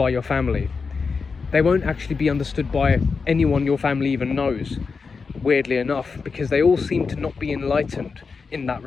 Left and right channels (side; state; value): right; quieter; 4.9 dB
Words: your family. They won't actually be understood by anyone your family even knows, weirdly enough, because they all seem to not be enlightened in that